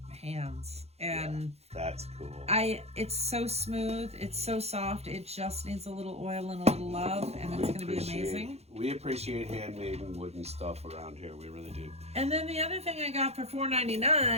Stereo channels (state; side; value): late; left; 0.31 ms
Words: hands, and that's cool. It's so smooth, it's so soft. It just needs a little oil and a little love, and it's going to be amazing. We appreciate handmade and wooden stuff around here. We really do. And then the other thing I got for